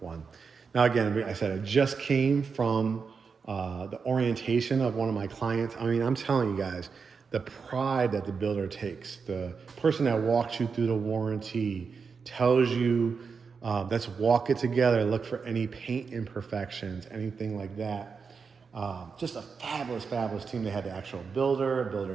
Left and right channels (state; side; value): quieter; left; 5.4 dB